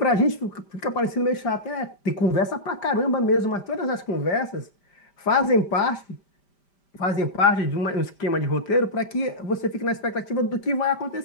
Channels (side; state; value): right; late; 5.1 ms